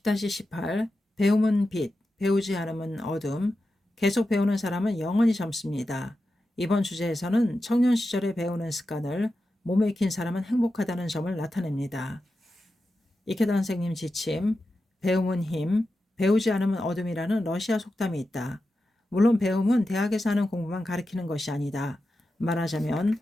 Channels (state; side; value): normal; both; correlation 0.91